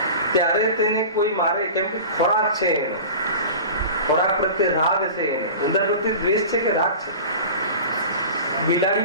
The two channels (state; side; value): inverted; both; correlation -0.36